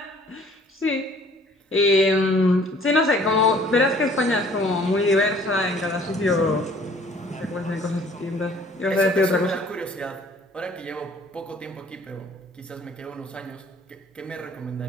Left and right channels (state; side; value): normal; both; correlation 0.55